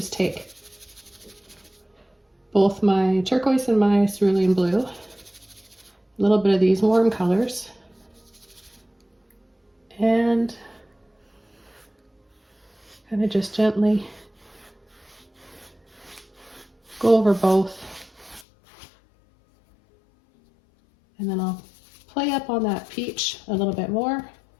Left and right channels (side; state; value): right; drops out; at 18.4 s